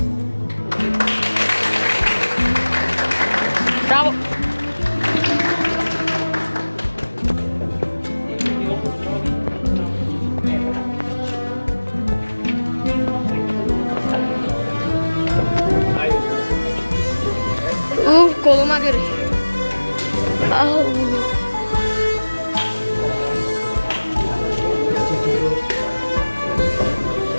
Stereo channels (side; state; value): both; inverted; correlation -1.00